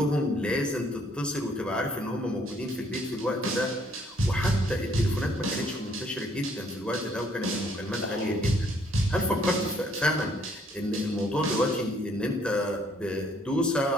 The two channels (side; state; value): both; normal; correlation 0.65